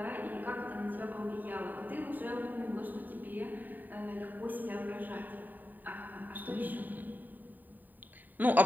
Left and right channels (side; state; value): left; late; 0.088 ms